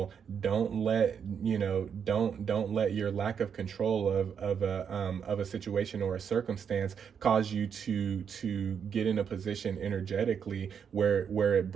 Don't let your lack of control of a situation or a circumstance cause you to get in a position energetically where it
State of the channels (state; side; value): quieter; left; 7.3 dB